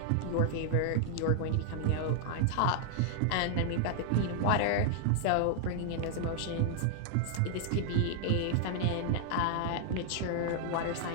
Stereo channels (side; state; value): both; different; correlation -0.01